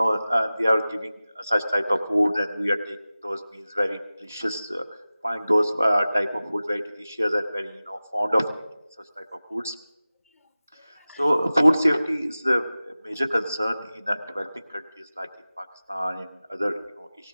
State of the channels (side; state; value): both; inverted; correlation -0.96